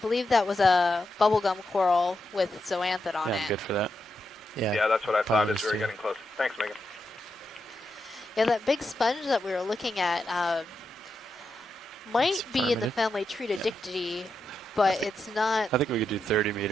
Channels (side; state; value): both; normal; correlation 0.85